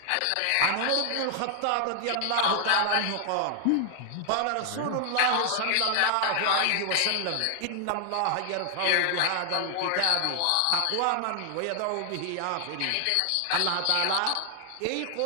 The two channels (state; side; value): different; both; correlation 0.00